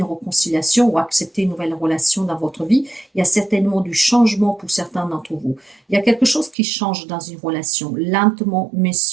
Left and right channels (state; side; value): drops out; left; at 6.6 s